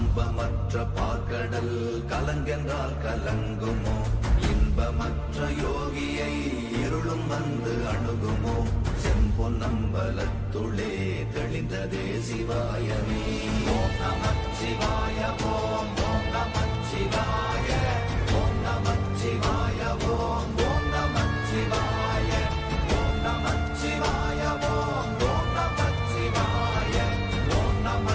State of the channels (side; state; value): both; identical; correlation 1.00